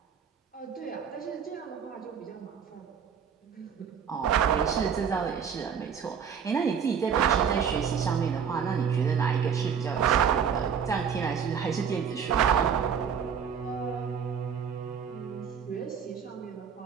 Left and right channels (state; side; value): quieter; left; 7.2 dB